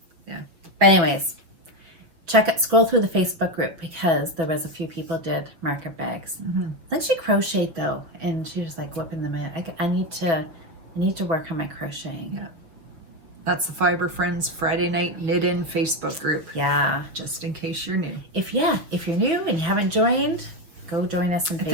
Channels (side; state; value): left; late; 6.3 ms